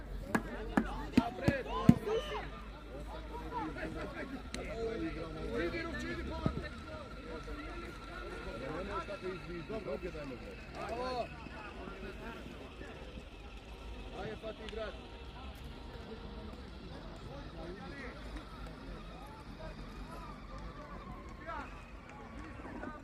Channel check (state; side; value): identical; both; correlation 1.00